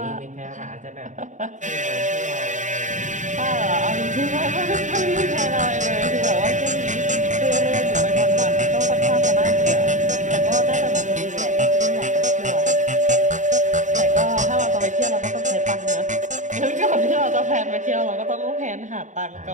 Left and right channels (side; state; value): left; late; 0.36 ms